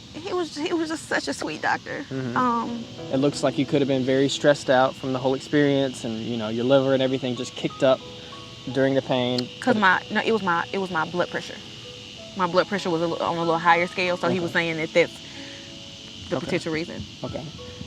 He was just such a sweet doctor. Mm-hmm. It looks like you could have been very stressed out from the whole experience, and your liver and everything just kicked up during the pain. It was my blood pressure. My blood pressure was on a little higher scale, so okay. He was saying that that's the potential reason. Okay.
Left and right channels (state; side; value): identical; both; correlation 1.00